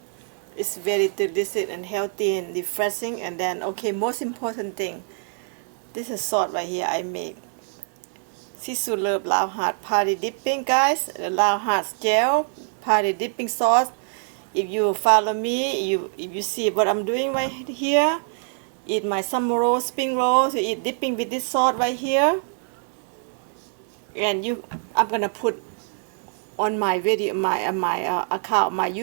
It's very delicious and healthy and refreshing. And then, okay, most important thing, this is salt right here I make. sisou love lao hard party dipping, guys. The lao hard gel party dipping sauce. If you follow me, if you see what I'm doing right here, eat my summer roll, spring rolls, you eat dipping with this sauce right here. And I'm gonna put on my video, my account, my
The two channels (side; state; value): left; silent; 62 dB below the other